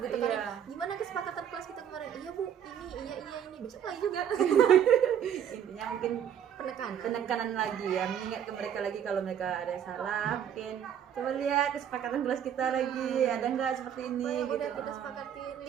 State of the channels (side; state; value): left; quieter; 9.0 dB